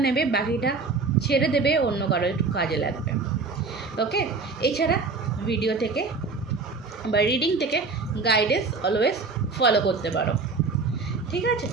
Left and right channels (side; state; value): left; quieter; 4.2 dB